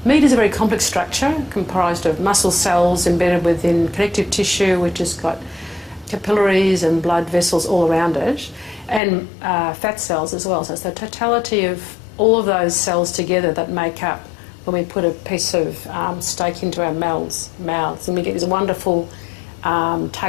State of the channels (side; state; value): right; drops out; at 9.0 s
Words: Meat is a very complex structure comprised of muscle cells embedded within connective tissue, which has got capillaries and blood vessels all around it, and fat cells as well. So it's the totality of all of those cells together that make up when we put a piece of steak into our mouths, and we get this wonderful